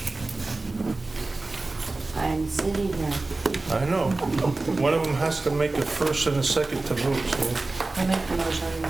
I'm sitting here. I know. One of them has to make a first and a second to vote, so. I make the motion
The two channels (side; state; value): left; quieter; 3.3 dB